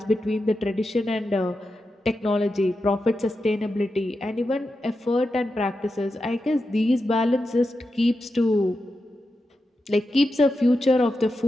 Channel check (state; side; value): normal; both; correlation 0.89